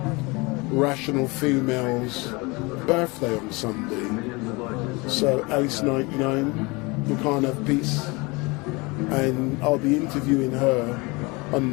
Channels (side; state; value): right; quieter; 26.0 dB